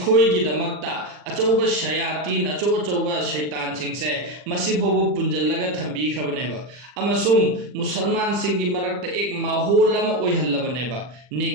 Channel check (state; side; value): late; left; 40 ms